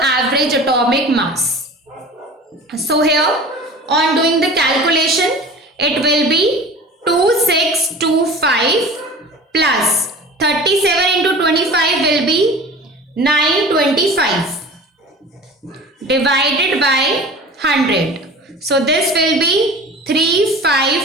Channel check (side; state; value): both; normal; correlation 0.39